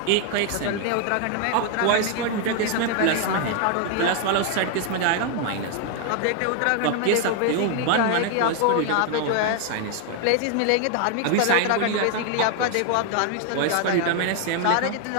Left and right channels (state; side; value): different; both; correlation 0.01